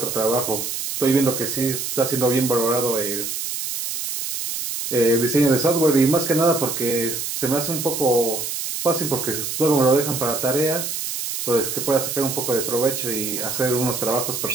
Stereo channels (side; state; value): right; noise; hiss, 4 dB below the sound